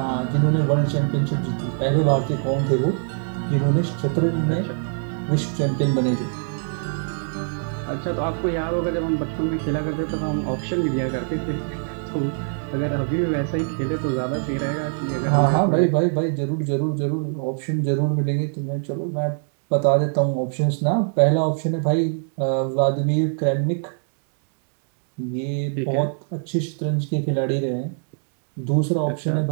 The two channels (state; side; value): silent; left; digital silence